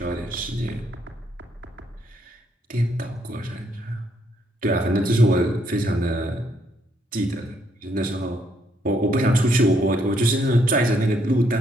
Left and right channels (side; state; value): both; normal; correlation 0.72